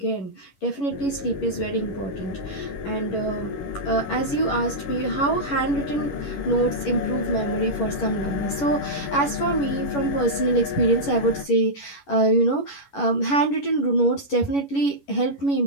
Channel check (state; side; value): late; right; 11 ms